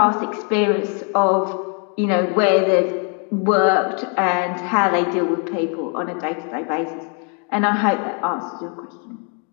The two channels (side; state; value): right; quieter; 39.2 dB